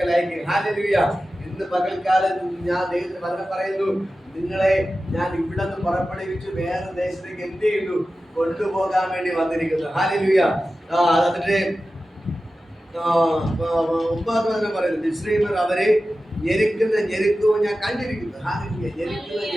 അയക്കും. ഹല്ലേലൂയ. ഇന്ന് പകൽക്കാലം ഞാൻ ദൈവത്തിന് വചനം പറയുന്നു, നിങ്ങളെ ഞാൻ ഇവിടെ നിന്ന് പുറപ്പെടുവിച്ചു വേറെ ദേശത്തേക്ക് എന്ത് ചെയ്യുന്നു? കൊണ്ടുപോകാൻ വേണ്ടി വന്നിരിക്കുന്നു. ഹല്ലേലൂയ. എന്നിട്ട് 9 വചനം പറയുന്നു, മിസ്രയീമ്യർ അവരെ ഞെരുക്കവും ഞാൻ കണ്ടിരിക്കുന്നു. ഹല്ലേലൂയ.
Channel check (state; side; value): normal; both; correlation 0.94